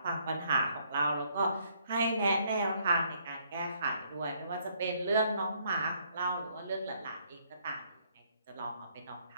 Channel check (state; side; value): inverted; both; correlation -0.68